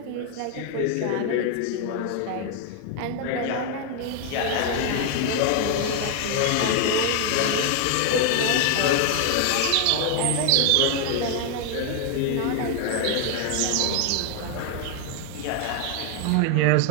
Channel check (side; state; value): both; different; correlation 0.00